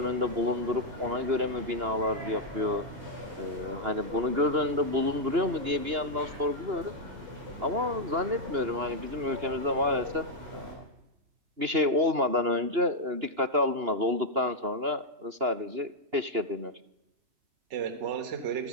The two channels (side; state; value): left; late; 2.9 ms